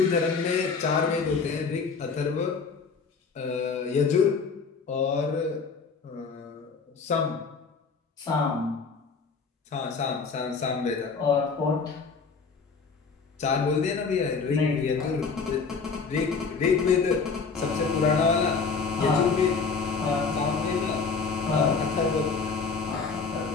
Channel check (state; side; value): quieter; right; 5.0 dB